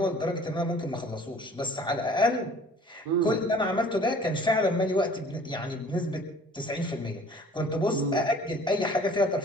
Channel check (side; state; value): both; normal; correlation 0.51